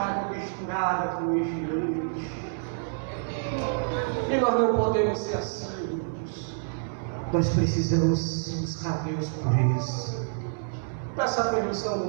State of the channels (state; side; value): silent; left; 56 dB below the other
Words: misturada com lixo. E nós não podemos ser assim. Nós precisamos buscar Deus por isso. Peça a permissão do